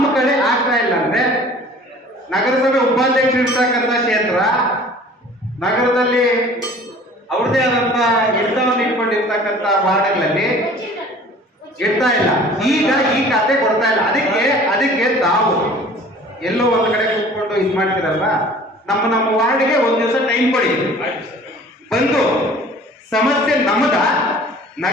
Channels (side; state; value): both; normal; correlation 0.48